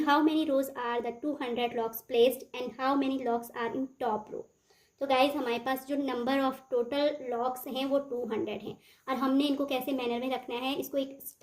how many rows are the 200 locks placed and how many locks are in top row? तो guys हमारे पास जो number of total locks हैं वो 200 हैं और हमने इनको कैसे मैनर में रखना है, इसको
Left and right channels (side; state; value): both; identical; correlation 1.00